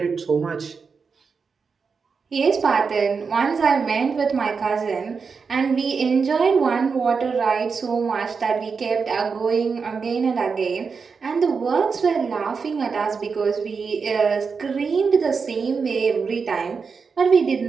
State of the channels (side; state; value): left; quieter; 5.3 dB